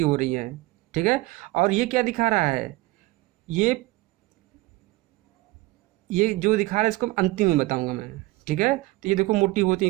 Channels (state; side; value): quieter; left; 20.3 dB